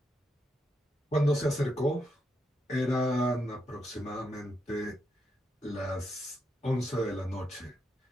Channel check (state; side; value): normal; both; correlation 0.82